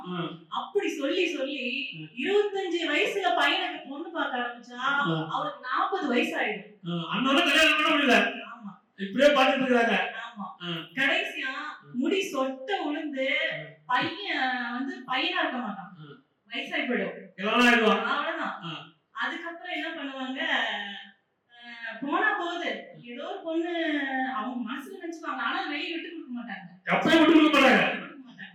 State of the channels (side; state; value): both; identical; correlation 1.00